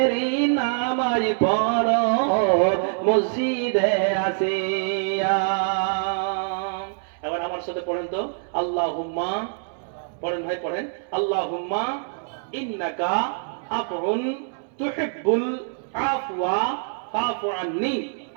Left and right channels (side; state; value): left; silent; 62 dB below the other